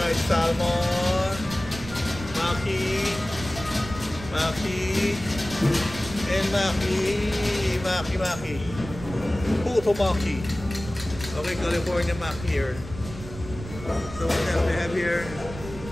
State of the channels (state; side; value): noise; right; rumble, 12 dB below the sound